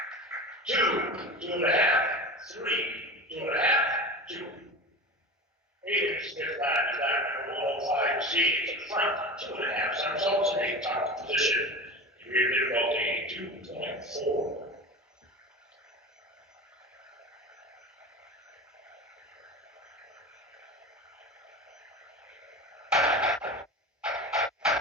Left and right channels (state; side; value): normal; both; correlation 0.30